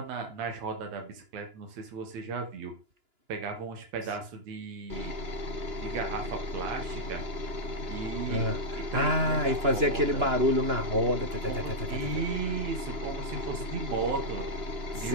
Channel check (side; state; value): left; late; 2.9 ms